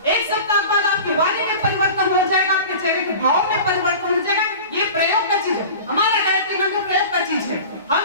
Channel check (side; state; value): both; inverted; correlation -0.37